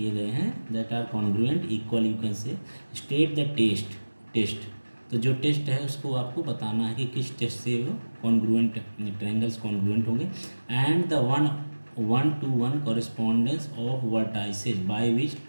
गए हैं that are congruent equal, you can say state the test. तो जो test है उसको आपको बताना है कि किस टेस्ट से वो कॉन्ग्रुएंट ट्रायंगल्स कॉन्ग्रुएंट होंगे. And the 1:1 correspondence of vertices by which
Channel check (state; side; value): inverted; both; correlation -1.00